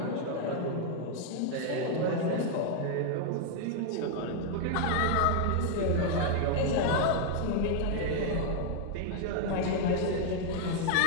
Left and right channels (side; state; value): both; different; correlation 0.00